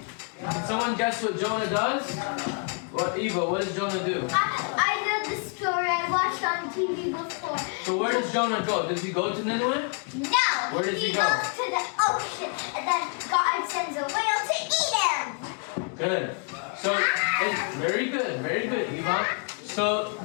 Can someone guess what Jonah does? What, Eva, what does Jonah do? I know the story. I watched on TV before. So where does Jonah go? Does he go to Nineveh? No. Where does he go? Goes to the ocean, and then God sends a whale to eat him. Good. So, very good, Eva. So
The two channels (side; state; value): right; quieter; 39.4 dB